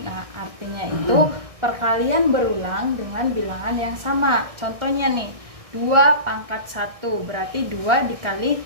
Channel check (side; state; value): left; late; 1.6 ms